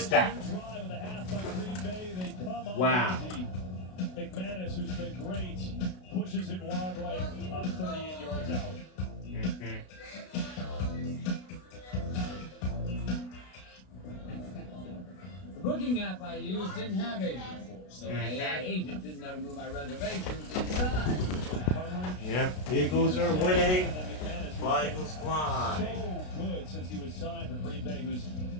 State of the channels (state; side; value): late; right; 33 ms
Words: that. drive of the half by Green Bay, they come up Wow. empty. McManus, who's been great, pushes it wide right on 38 yards out. The booking app I used didn't have agent force, so my AI agent didn't know to move my reservations inside. Yep, Eagles are winning. Fly, Eagles fly. So good since he was signed for Green Bay, who's